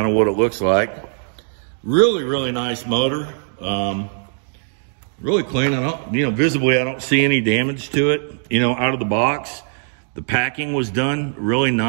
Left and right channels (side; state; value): left; silent; digital silence